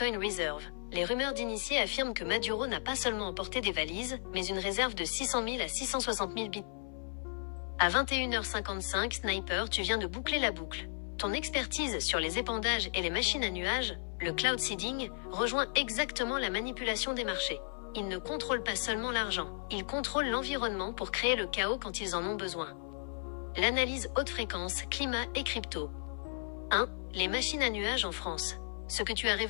Reserve. Les rumeurs d'initiés affirment que Maduro n'a pas seulement emporté des valises, mais une réserve de 600 000 à 660 000 bitcoins. À 21h55, Sniper, tu viens de boucler la boucle. Ton expertise sur les épandages et les machines à nuages, le cloud seeding, rejoint exactement la manipulation des marchés. Ils ne contrôlent pas seulement l'argent, ils contrôlent l'environnement pour créer le chaos quand ils en ont besoin. L'analyse haute fréquence, climat et crypto. 1. Les machines à nuages en France. Ce que tu as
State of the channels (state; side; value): silent; right; 55 dB below the other